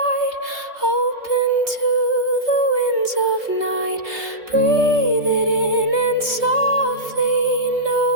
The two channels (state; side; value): late; left; 3.3 ms